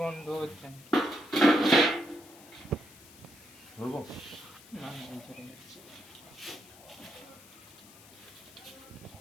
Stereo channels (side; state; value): left; noise; hiss, 21 dB below the sound